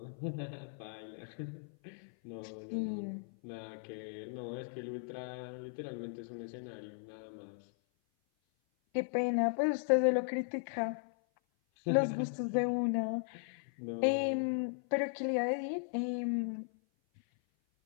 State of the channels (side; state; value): right; silent; 53 dB below the other